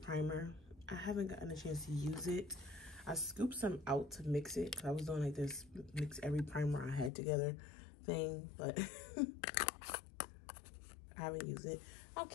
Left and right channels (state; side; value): drops out; right; at 7.1 s